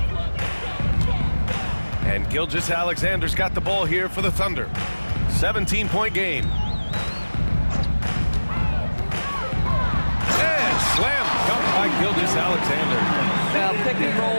And Gilgeous-Alexander's got the ball here for the Thunder. 17-point game. Slam dunk by Gilgeous-Alexander. Well, pick and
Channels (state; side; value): inverted; both; correlation -1.00